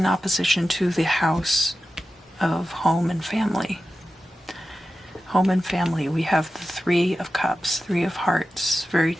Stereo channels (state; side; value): normal; both; correlation 0.93